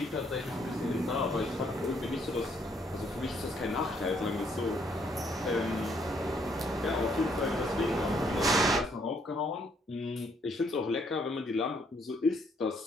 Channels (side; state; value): both; normal; correlation 0.69